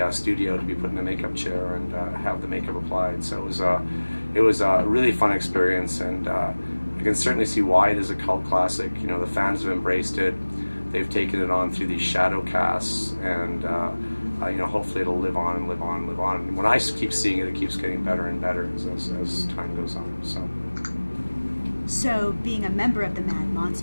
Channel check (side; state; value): both; inverted; correlation -1.00